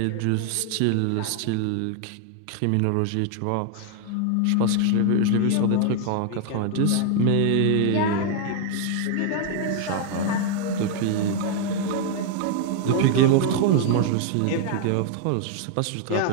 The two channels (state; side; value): different; both; correlation 0.00